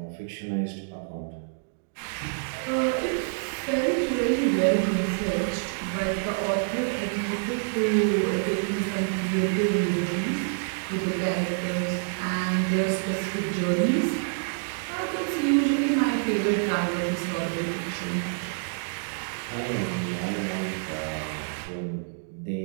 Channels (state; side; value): silent; left; digital silence